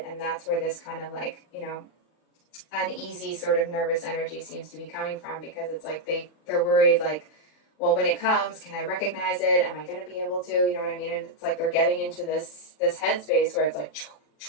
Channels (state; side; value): late; right; 39 ms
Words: And that's where this kind of like, uneasy sort of nervous energy seems to be coming from, because it's like they're worried, like, well, when it comes, can I recognize it? Am I going to be able to? You know what I mean? And it's like they're getting into this headspace where it's like,